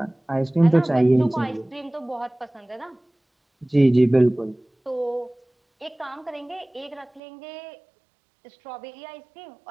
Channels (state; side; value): drops out; left; at 7.2 s